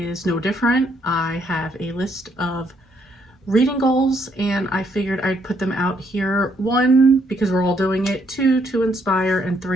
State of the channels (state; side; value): normal; both; correlation 0.72